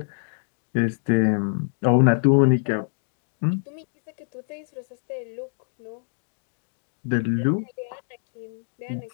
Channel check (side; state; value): right; silent; digital silence